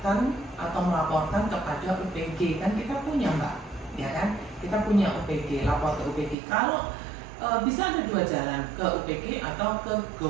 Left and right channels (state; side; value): drops out; left; at 6.4 s